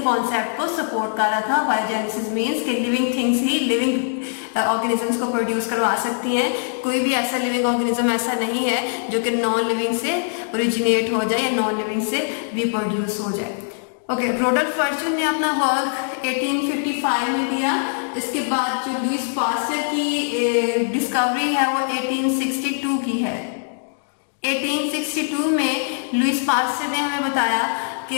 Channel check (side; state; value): right; silent; digital silence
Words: कॉन्सेप्ट को सपोर्ट कर रहा था। बायोजेनेसिस मीन्स कि लिविंग थिंग्स ही लिविंग ऑर्गेनिजम्स को प्रोड्यूस करवा सकती हैं। कोई भी ऐसा लिविंग ऑर्गेनिज्म ऐसा नहीं है जो कि नॉन लिविंग से ओरिजिनेट हो जाए या नॉन लिविंग से रिप्रोड्यूस हो जाए। ओके, रोडल्फ वर्चू ने अपना वर्क 1855 में दिया। इसके बाद जो लुईस पास्चर की डिस्कवरी है वो 1862 की है। 1862 में लुईस पास्चर ने हमें बताया